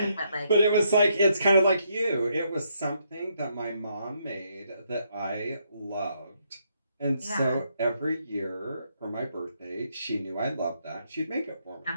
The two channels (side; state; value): both; inverted; correlation -0.75